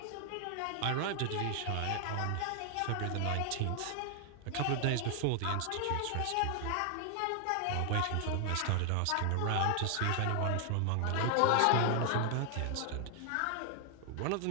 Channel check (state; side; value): different; both; correlation 0.00